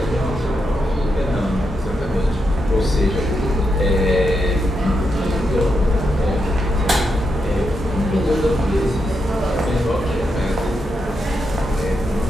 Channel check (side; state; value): both; normal; correlation 0.84